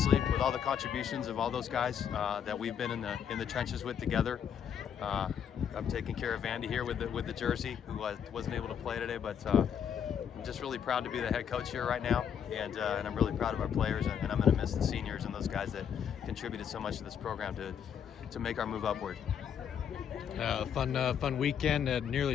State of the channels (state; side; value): quieter; right; 8.2 dB